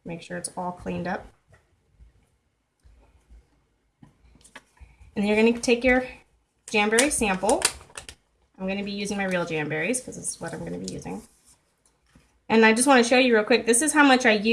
Make sure it's all cleaned up. And then you're going to take your Jamberry sample. I'm going to be using my real Jamberries because this is what I'm going to be using. And I just want to show you real quick. This is how much I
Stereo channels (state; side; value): identical; both; correlation 1.00